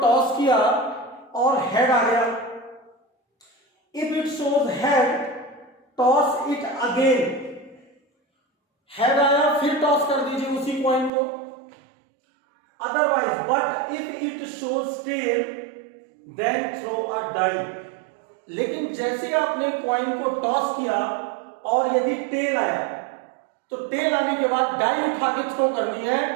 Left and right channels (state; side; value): drops out; left; at 11.1 s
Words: किया और हेड आ गया। If it shows head toss it again, head आया फिर टॉस कर दीजिए उसी कॉइन को। Otherwise but if it shows tail then throw a die. लेकिन जैसे आपने कॉइन को टॉस किया और यदि टेल आया तो टेल आने के बाद डाई उठा के थ्रो करनी है,